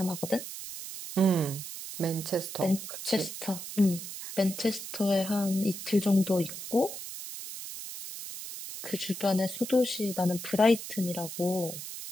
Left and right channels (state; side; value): noise; right; hiss, 9 dB below the sound